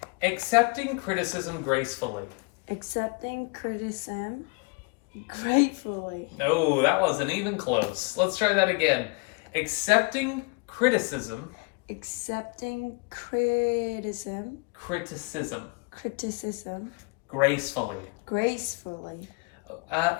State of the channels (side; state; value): right; quieter; 31.1 dB